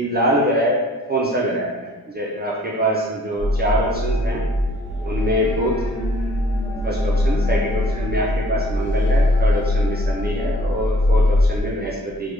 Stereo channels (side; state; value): both; normal; correlation 0.56